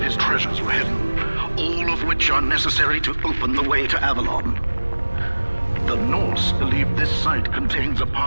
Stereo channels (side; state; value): both; inverted; correlation -1.00